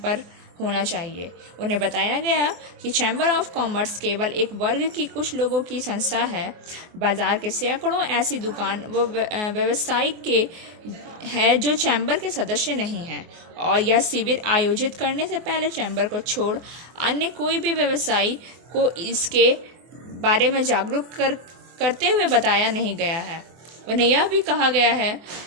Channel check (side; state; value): left; late; 24 ms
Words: होना चाहिए। उन्हें बताया गया कि चैम्बर ऑफ कॉमर्स केवल एक वर्ग की कुछ लोगों की संस्था है। बाजार के सैकड़ों ऐसी दुकान व व्यवसायिक के है जो चैम्बर के सदस्य नहीं हैं और यह शिविर आयोजित करने से पहले चैम्बर को छोड़ अन्य कोई भी व्यवसायी को इसके बारे में जागरूक करते हुए बताया नहीं गया है। उन्हें यह भी कहा गया है